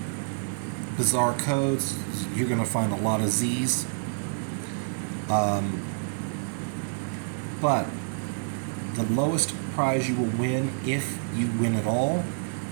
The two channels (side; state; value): left; silent; digital silence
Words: bizarre codes. You're going to find a lot of Z's. But the lowest prize you will win, if you win at all,